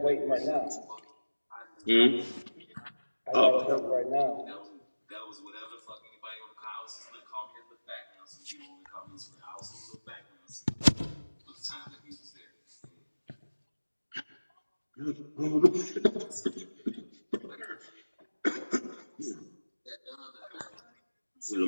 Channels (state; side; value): inverted; both; correlation -1.00